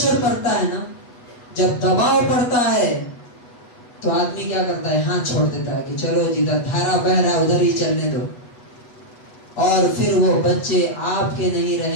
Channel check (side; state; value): right; late; 8.2 ms